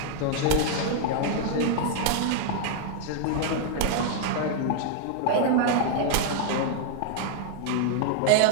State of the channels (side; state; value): both; different; correlation 0.00